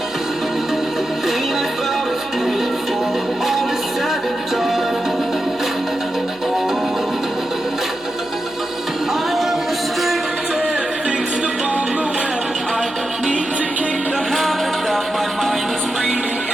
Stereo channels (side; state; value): left; noise; hum, 26 dB below the sound